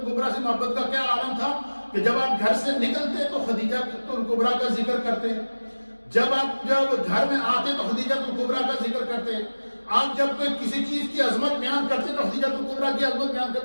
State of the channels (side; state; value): both; inverted; correlation -1.00